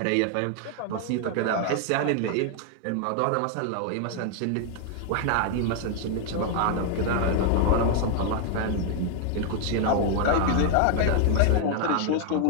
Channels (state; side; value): different; both; correlation 0.00